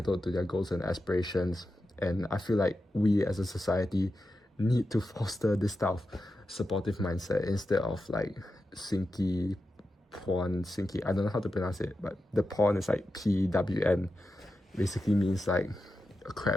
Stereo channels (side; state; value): both; normal; correlation 0.90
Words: to their goals and aspirations. And I feel like we as a society need to foster this type of supportive mindset instead of like sinky, I don't know how to pronounce it, but the porn is like PWN, basically means like a